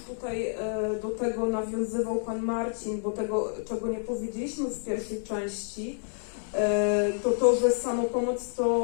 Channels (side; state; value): right; silent; 59 dB below the other